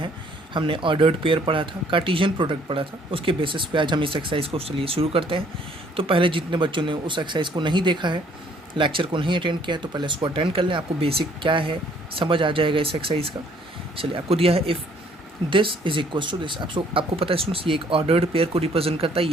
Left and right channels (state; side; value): normal; both; correlation 0.62